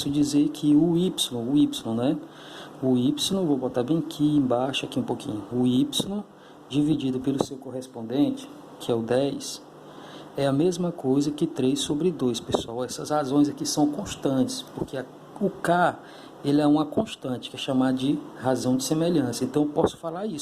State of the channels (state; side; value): identical; both; correlation 1.00